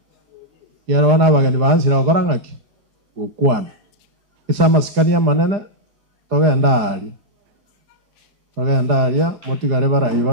yarona bagani bansira okorangaki ukwana isa maskania manene togenda aria motigare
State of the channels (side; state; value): left; late; 4.9 ms